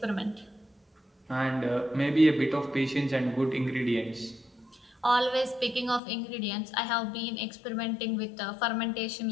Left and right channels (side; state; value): right; drops out; at 6.0 s